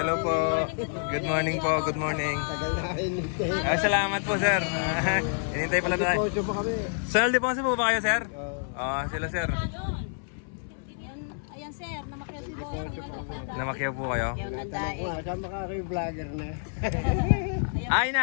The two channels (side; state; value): right; silent; 59 dB below the other